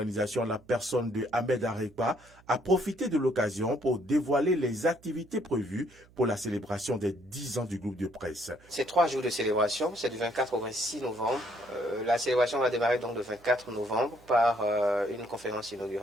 la personne de Ahmed Arepa, a profité de l'occasion pour dévoiler les activités prévues pour la célébration des 10 ans du groupe de presse. C'est 3 jours de célébration, c'est du 24 au 26 novembre. La célébration va démarrer donc le 24 novembre par une conférence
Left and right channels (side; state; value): right; noise; hum, 27 dB below the sound